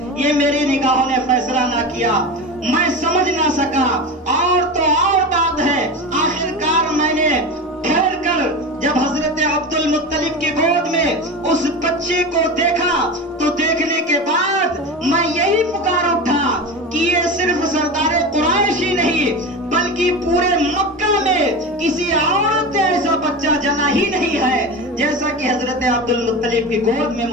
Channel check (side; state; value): both; normal; correlation 0.26